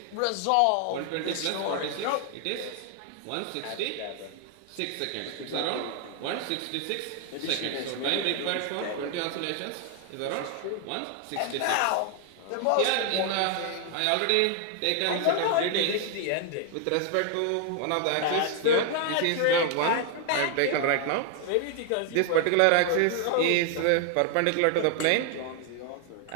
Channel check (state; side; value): different; both; correlation 0.00